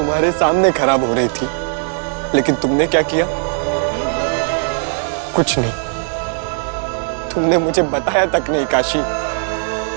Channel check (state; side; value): silent; left; digital silence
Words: सामने खराब हो रही थी, लेकिन तुमने क्या किया? कुछ नहीं। तुमने मुझे बताया तक नहीं काशी।